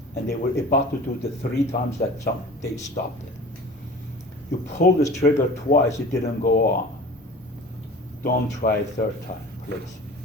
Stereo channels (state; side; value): normal; both; correlation 0.40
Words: and they were about to do the 3 times that they stopped it. You pull this trigger twice, it didn't go on. Don't try a 3rd time, please,